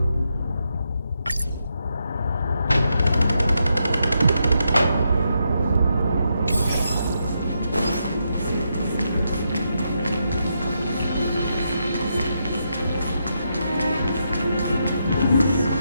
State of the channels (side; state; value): both; inverted; correlation -0.82